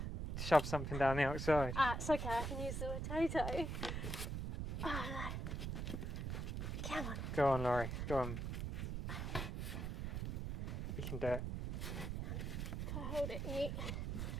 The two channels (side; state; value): right; noise; rumble, 2 dB below the sound